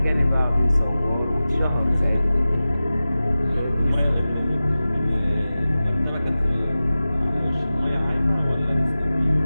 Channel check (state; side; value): inverted; both; correlation -0.95